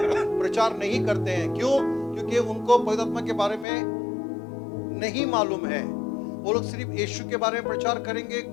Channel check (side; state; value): right; drops out; at 3.7 s